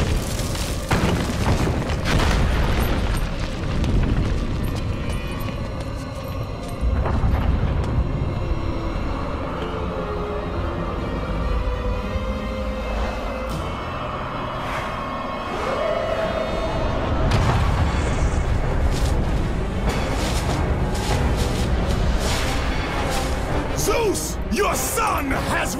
Zeus, your son has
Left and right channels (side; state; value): both; identical; correlation 1.00